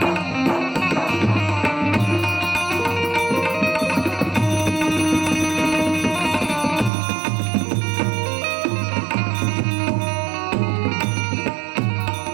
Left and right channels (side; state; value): left; drops out; at 6.9 s